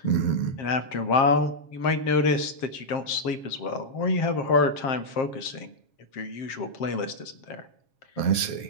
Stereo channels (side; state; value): right; late; 7.3 ms